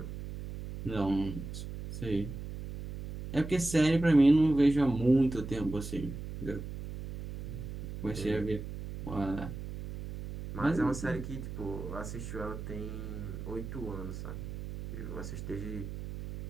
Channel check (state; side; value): noise; right; hum, 8 dB below the sound